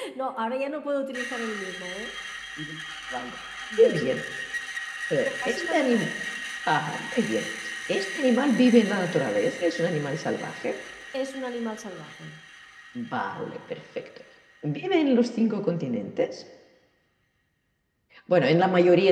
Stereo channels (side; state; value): both; identical; correlation 1.00